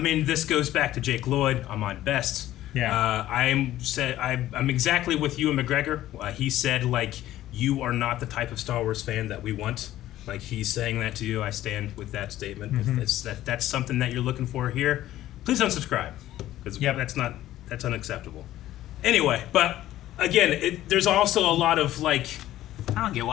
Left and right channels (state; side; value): quieter; right; 14.0 dB